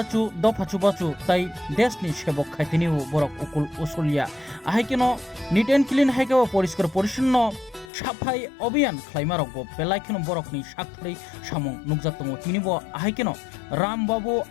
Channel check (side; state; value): right; drops out; at 7.9 s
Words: Dopachubachu Tai Desni Sebok Khaitini Borok Ukul Usulia Ahikino Neat and Clean Haikawa Poriskar Porishno Shapai Obian Klaimarok Belaikino Borokni Shakri Shamong Nugzatomo Tinibo Ahikino Rambabu